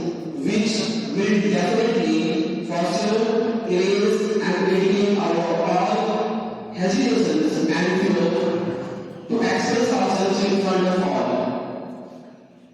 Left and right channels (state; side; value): identical; both; correlation 1.00